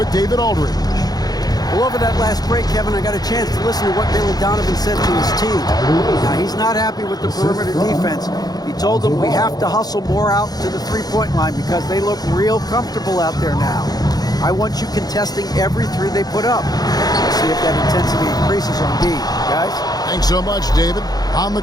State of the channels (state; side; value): late; right; 0.19 ms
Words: David Aldridge. Well, over that last break, Kevin, I got a chance to listen to what Billy Donovan said to his team. Now, he's not happy with the perimeter defense. He told them we have to hustle more out to the three-point line because they look real comfortable out there now. I want you contesting every three they put up. We'll see if that intensity increases on D. Guys? Thanks so much, David. On the